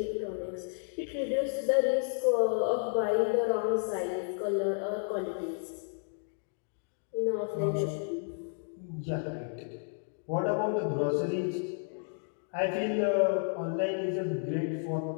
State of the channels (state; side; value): silent; right; 56 dB below the other